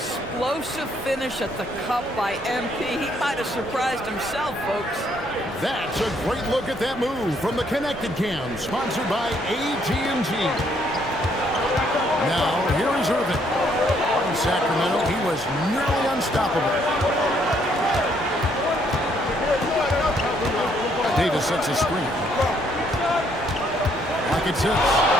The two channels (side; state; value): both; normal; correlation 0.69